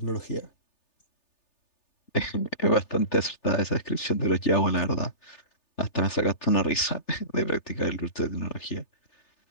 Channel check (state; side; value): late; right; 3.3 ms